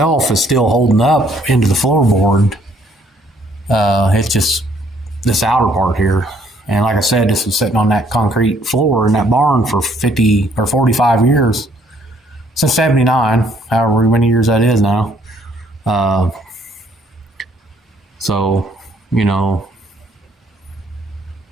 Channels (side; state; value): both; normal; correlation 0.65